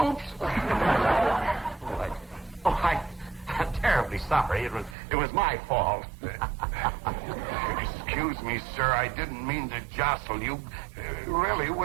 I'm terribly sorry. It was my fault. Excuse me, sir. I didn't mean to jostle you. Really, it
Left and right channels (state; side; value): drops out; left; at 5.0 s